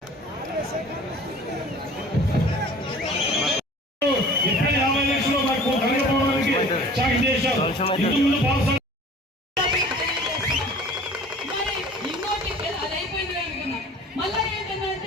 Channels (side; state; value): both; normal; correlation 0.45